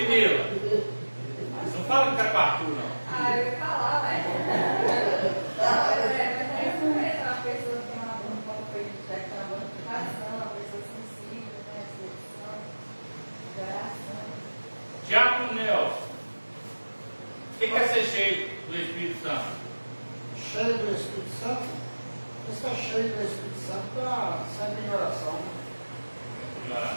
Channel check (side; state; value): both; inverted; correlation -1.00